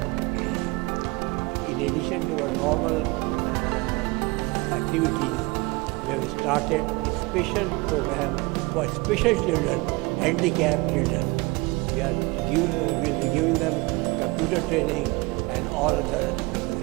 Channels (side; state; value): left; quieter; 25.2 dB